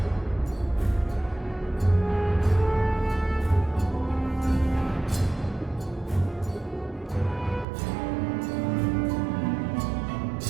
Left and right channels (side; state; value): left; drops out; at 7.7 s